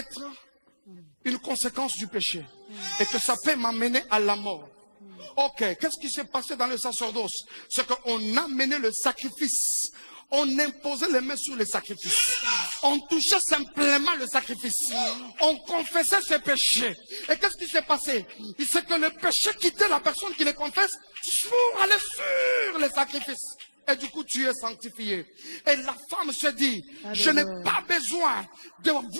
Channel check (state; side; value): inverted; both; correlation -1.00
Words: une conséquence du péché. Et que ça peut m'amener à la mort. Ok, qu'est-ce qui s'est passé dans le sacerdoce? C'est qu'on amenait le sacrifice. On imposait les mains sur le sacrifice. On touchait simplement le sacrifice. On confessait ses péchés. Et qu'est-ce qui s'est passé? C'est que le péché quittait la personne qui le confesse pour aller sur le sacrifice. Et du coup, tu es sanctifié. Et la femme se dit, je n'ai pas besoin de